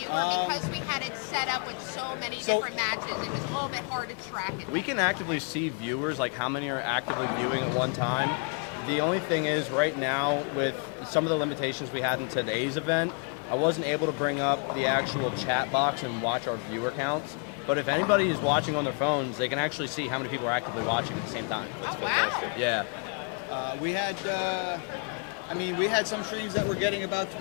or because we had it set up with so many different matches, it was a little bit hard to track it? We can actively see viewers, like how many are actively viewing at one time. The only thing is right now with some of the limitations we had in today's event, I wasn't able to bring up the actual chat box and watch our viewer counts. But if anybody is watching on their phones, they can actually see how many people are actively watching at the same time. Oh, wow. Yeah. We had, we had some streams that were getting about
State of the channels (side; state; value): right; quieter; 37.7 dB